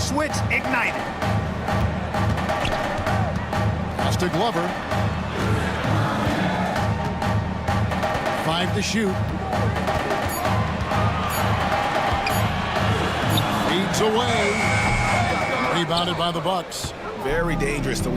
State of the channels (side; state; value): both; identical; correlation 1.00